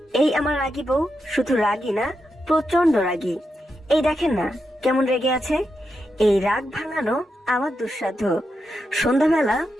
এই আমার রাগী বউ শুধু রাগী না, প্রচন্ড রাগী। এই দেখেন না কেমন রেগে আছে। এই রাগ ভাঙানো আমার দুঃসাধ্য। সন্ধ্যাবেলা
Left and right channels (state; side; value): normal; both; correlation 0.86